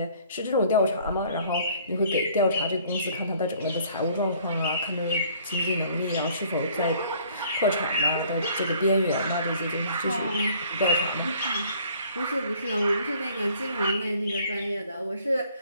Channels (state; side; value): inverted; both; correlation -0.57